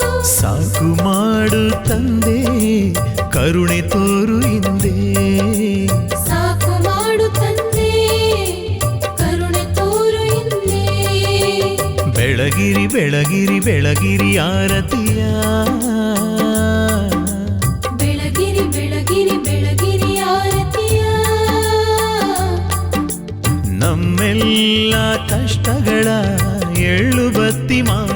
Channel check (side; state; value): both; identical; correlation 1.00